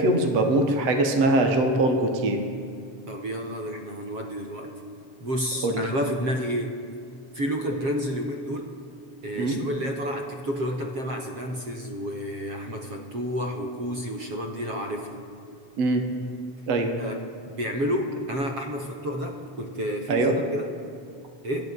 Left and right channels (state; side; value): late; left; 7.4 ms